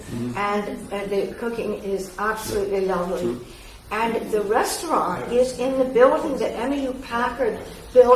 and the cooking is absolutely lovely. And the restaurant is in the building that Emmylou Packard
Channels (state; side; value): identical; both; correlation 1.00